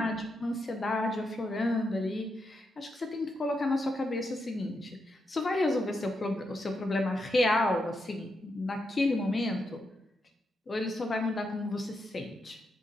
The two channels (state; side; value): normal; both; correlation 0.84